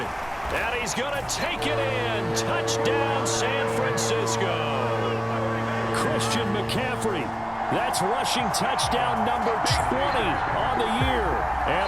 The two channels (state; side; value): identical; both; correlation 1.00